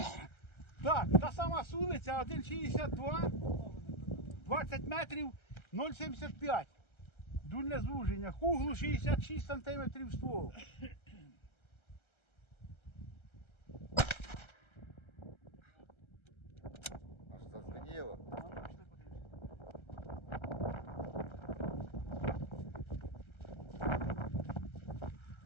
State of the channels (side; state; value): right; late; 1.3 ms